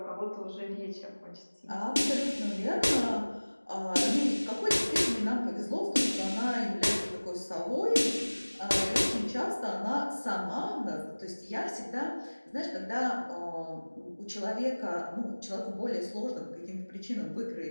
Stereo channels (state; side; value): inverted; both; correlation -1.00